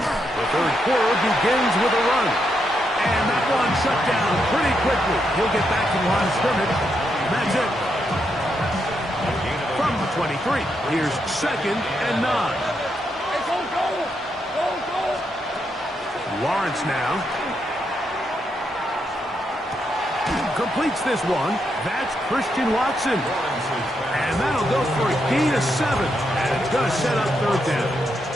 The third quarter begins with a run. And that one shut down pretty quickly. He'll get back to the line of scrimmage. And that's it. From the 23, here's 2nd and 9. Hey, go, go! Go, go! Lawrence now. Completes this one. That's Christian Watson. And that'll go for a gain of 7. And it's going to set up 3rd down.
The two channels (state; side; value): normal; both; correlation 0.81